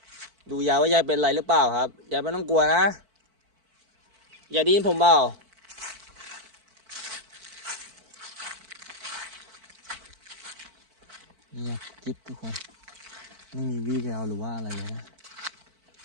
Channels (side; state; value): left; late; 4.5 ms